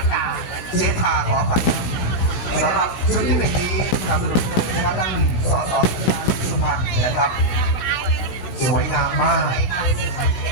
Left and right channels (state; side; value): late; right; 15 ms